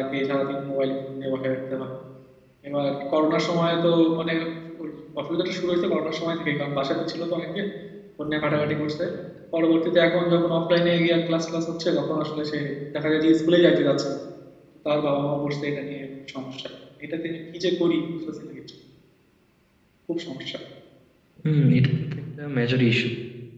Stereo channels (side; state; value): both; identical; correlation 1.00